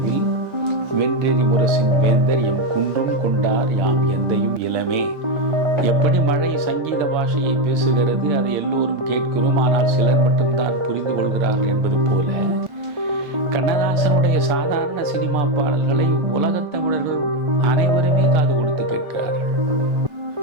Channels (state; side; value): late; left; 1.4 ms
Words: வென்றெறி முரசின் வேந்தர் எம் குன்றும் கொண்டார் யாம் எந்தையும் இளமே. எப்படி மழை சங்கீத பாஷையை பேசுகிறது, அதை எல்லோரும் கேட்கிறோம், ஆனால் சிலர் மட்டும்தான் புரிந்து கொள்கிறார்கள் என்பது போல கண்ணதாசனுடைய சாதாரண சினிமா பாடல்களை உலகத் தமிழர்கள் அனைவருமே காது கொடுத்து கேட்கிறார்கள்.